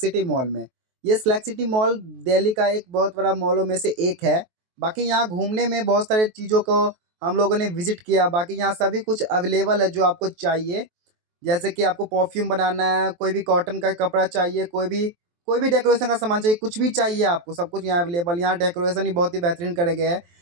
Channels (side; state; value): left; late; 23 ms